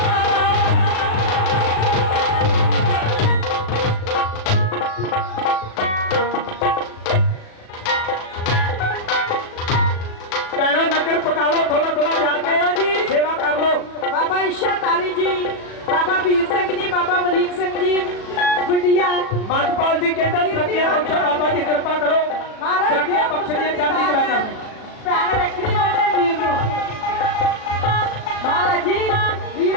ਪੈਣਾ ਨਗਰ ਪਕਾ ਲਓ ਥੋੜਾ ਥੋੜਾ ਜਾ ਕੇ ਜੀ ਸੇਵਾ ਕਰ ਲਓ ਬਾਬਾ ਇੱਛਾਧਾਰੀ ਜੀ, ਬਾਬਾ ਵੀਰ ਸਿੰਘ ਜੀ, ਬਾਬਾ ਅਮਰੀਕ ਸਿੰਘ ਜੀ, ਗੁੱਡੀਆ ਮਤਪਾਲ ਜੀ ਕਹਿੰਦਾ ਤਰੱਕੀਆਂ ਬਖਸ਼ੋ ਬਾਬਾ ਜੀ ਕਿਰਪਾ ਕਰੋ ਮਹਾਰਾਜ ਤਰੱਕੀਆਂ ਬਖਸ਼ਣੀਆਂ ਚੜ੍ਹਦੀ ਕਲਾ ਕਰਨੀ ਭੈਣ ਰੱਖਣੀ ਬਣੇ ਵੀਰ ਨੂੰ। ਮਹਾਰਾਜ ਜੀ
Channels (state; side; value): late; right; 37 ms